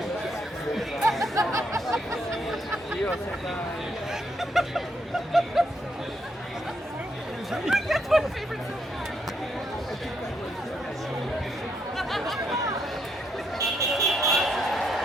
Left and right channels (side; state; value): both; normal; correlation 0.76